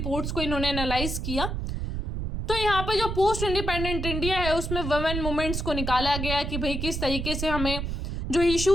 को इन्होंने एनालाइज किया। तो यहाँ पे जो पोस्ट इंडिपेंडेंट इंडिया है उसमें वुमेन मूवमेंट्स को निकाला गया कि भाई किस तरीके से हमें जो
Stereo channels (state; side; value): noise; right; rumble, 3 dB below the sound